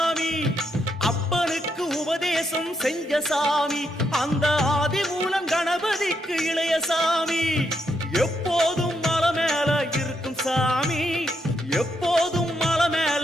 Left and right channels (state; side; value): normal; both; correlation 0.79